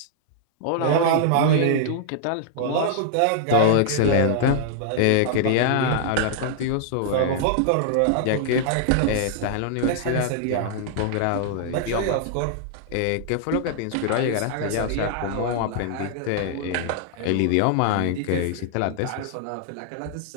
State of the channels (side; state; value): both; different; correlation -0.01